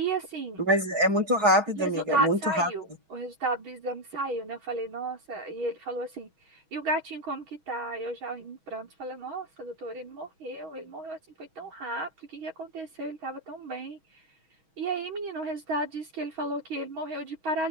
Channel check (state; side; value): late; left; 6.2 ms